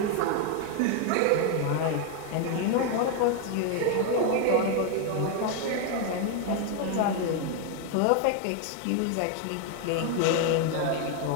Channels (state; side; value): different; both; correlation 0.01